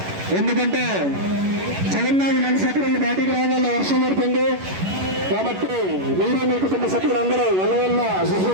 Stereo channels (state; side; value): late; left; 11 ms